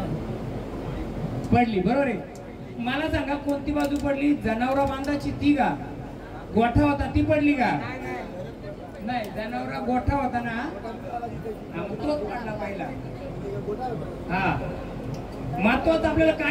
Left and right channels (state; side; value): identical; both; correlation 1.00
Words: पडली, बरोबर आहे. मला सांगा कोणती बाजू पडली, जनावरा बांधाची ती का, गोठा होता ती पडली का, नाही जनावरा गोठा होता ना, तोच पडला पहिला. हा, महत्वाचं आपल्याला